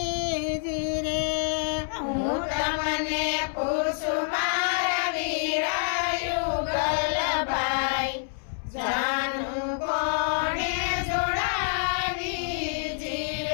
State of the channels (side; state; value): right; silent; 60 dB below the other